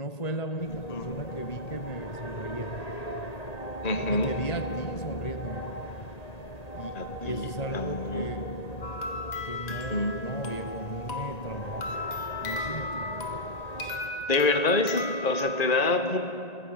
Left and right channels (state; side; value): late; right; 1.8 ms